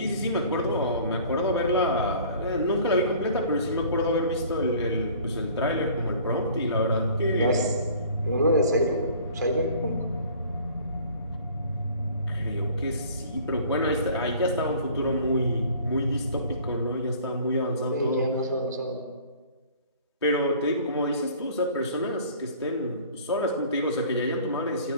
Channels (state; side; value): inverted; both; correlation -0.50